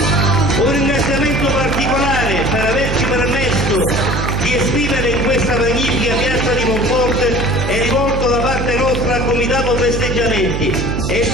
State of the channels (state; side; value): noise; right; hum, 2 dB below the sound